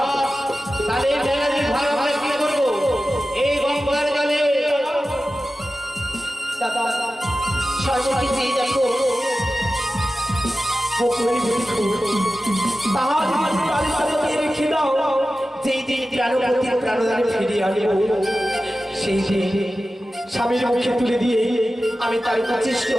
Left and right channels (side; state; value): both; normal; correlation 0.94